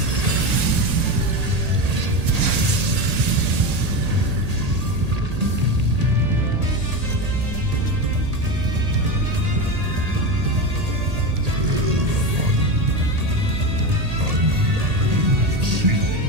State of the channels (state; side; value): late; left; 1.8 ms